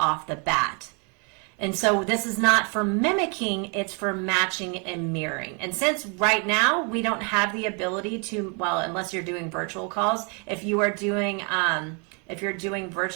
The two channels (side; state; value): left; quieter; 35.4 dB